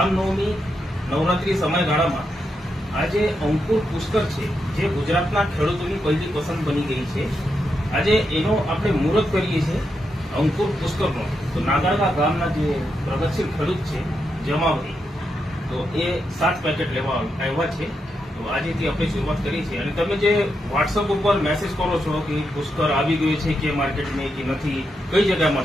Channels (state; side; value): normal; both; correlation 0.84